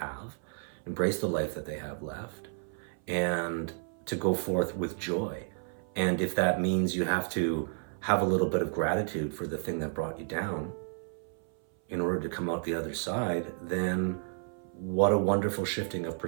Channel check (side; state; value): left; silent; 57 dB below the other